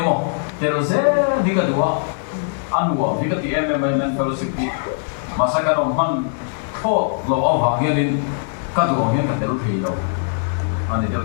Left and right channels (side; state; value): right; silent; 65 dB below the other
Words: mọi thì rồi sẽ đi cái đó ăn uống thì cái gì em men fellowship đi mà sao cái đồng man thô lâu ao vàng nghe lên cái đồ nghe cái đều thì đâu anh ấy đều